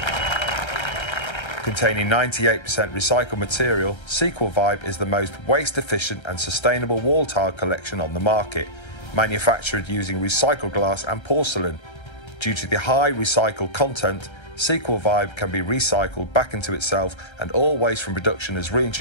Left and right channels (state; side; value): late; right; 1.3 ms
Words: Containing 98% recycled material, Sequel Vibe is the most waste-efficient and sustainable wall tile collection on the market, manufactured using recycled glass and porcelain. Due to the high recycled content, Sequel Vibe can be recycled back into itself, and all waste from production is